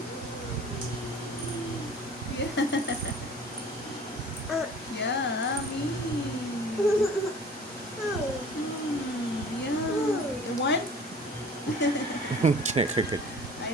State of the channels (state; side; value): normal; both; correlation 0.47